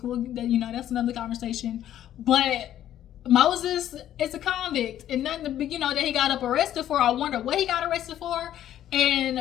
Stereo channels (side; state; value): right; quieter; 11.6 dB